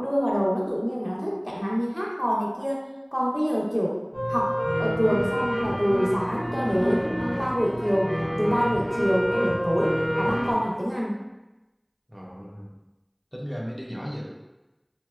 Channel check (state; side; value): identical; both; correlation 1.00